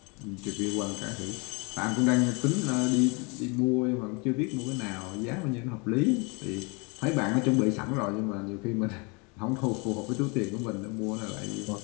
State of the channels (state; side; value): quieter; right; 30.6 dB